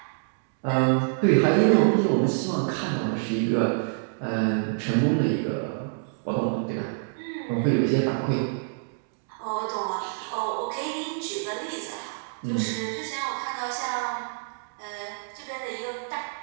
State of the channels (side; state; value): left; silent; digital silence